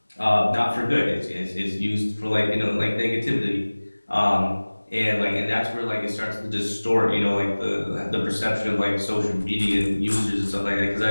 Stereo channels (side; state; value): both; inverted; correlation -1.00